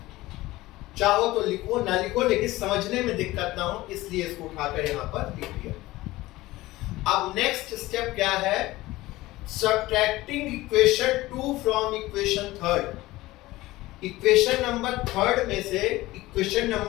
चाहो तो लिखो, ना लिखो, लेकिन समझने में दिक्कत ना हो इसलिए इसको उठाकर यहाँ पर लिख दिया। अब नेक्स्ट स्टेप क्या है, subtracting equation 2 from equation 3। Equation number 3 में से इक्वेशन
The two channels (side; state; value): right; quieter; 18.3 dB